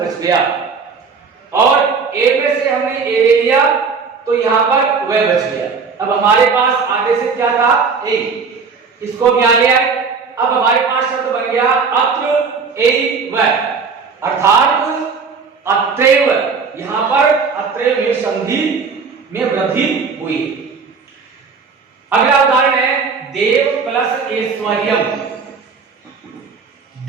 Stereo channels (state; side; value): quieter; left; 5.2 dB